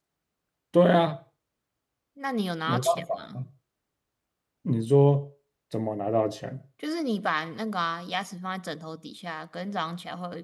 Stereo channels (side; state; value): both; identical; correlation 1.00